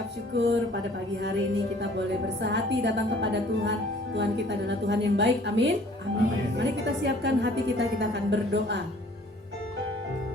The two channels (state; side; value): normal; both; correlation 0.54